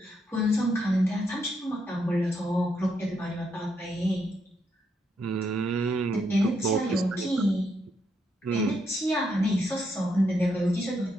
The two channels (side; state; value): both; normal; correlation 0.78